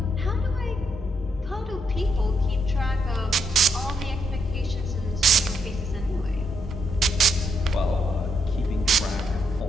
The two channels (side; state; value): both; normal; correlation 0.77